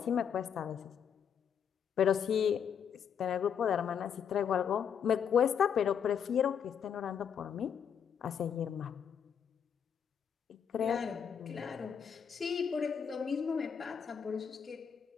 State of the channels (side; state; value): right; quieter; 7.7 dB